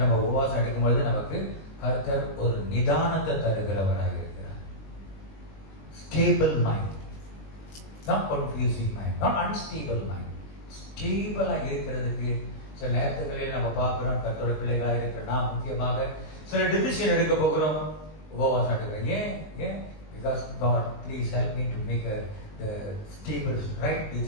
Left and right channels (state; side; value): late; right; 20 ms